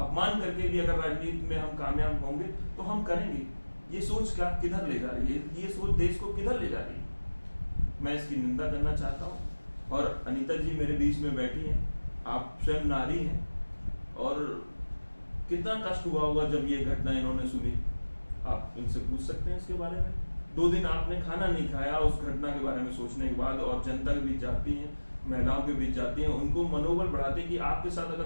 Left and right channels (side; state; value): both; inverted; correlation -1.00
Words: करके भी अगर राजनीति में हम कामयाब होंगे तो हम करेंगे। ये सोच क्या किधर ले जा रही है? ये सोच देश को किधर ले जा रही है? मैं इसकी निंदा करना चाहता हूँ। और अनीता जी मेरे बीच में बैठी हैं, आप स्वयं नारी हैं, और कितना कष्ट हुआ होगा जब ये घटना इन्होंने सुनी। आप इनसे पूछ सकते हैं इसके बारे में। 2 दिन आपने खाना नहीं खाया उस घटना के बारे में सोचने के बाद, और जनता के बीच जाती हैं, महिलाओं के बीच जाती हैं, उनको मनोबल बढ़ाते हैं कि आपके साथ